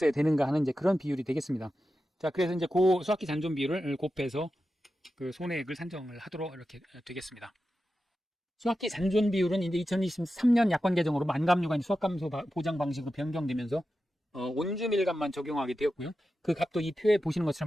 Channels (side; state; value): both; normal; correlation 0.91